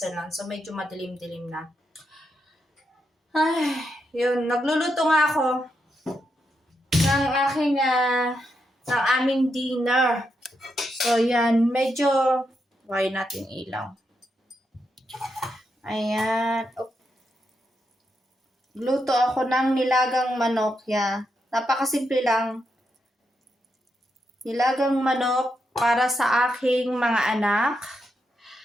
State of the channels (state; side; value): normal; both; correlation 0.83